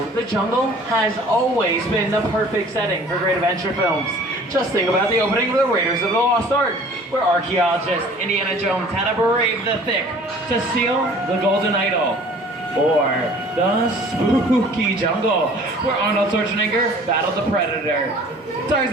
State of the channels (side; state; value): both; normal; correlation 0.50